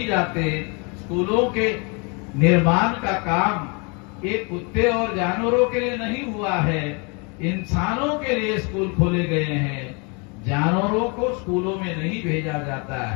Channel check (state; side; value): quieter; right; 32.6 dB